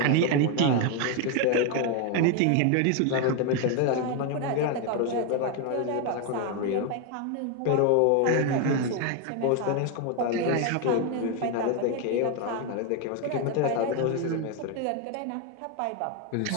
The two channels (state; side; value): different; both; correlation 0.01